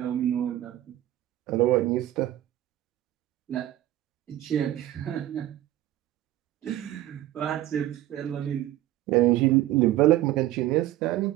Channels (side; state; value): left; quieter; 14.3 dB